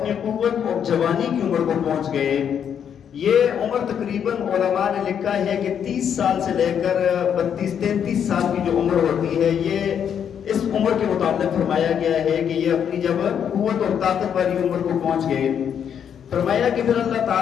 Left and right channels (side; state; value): right; quieter; 8.3 dB